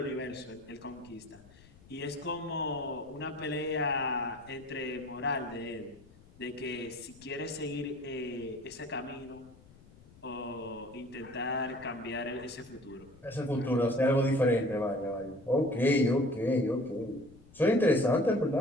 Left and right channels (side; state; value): left; noise; rumble, 24 dB below the sound